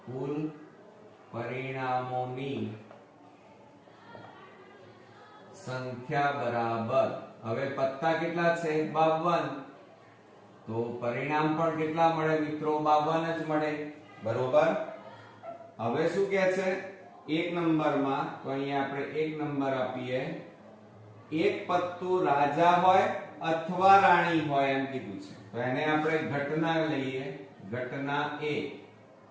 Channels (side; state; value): both; identical; correlation 1.00